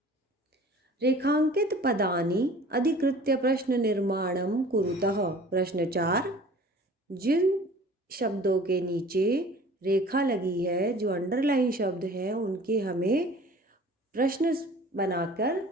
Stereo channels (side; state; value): both; normal; correlation 0.46